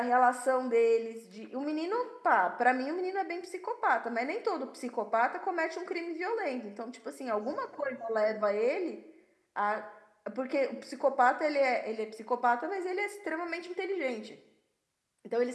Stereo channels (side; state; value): both; identical; correlation 1.00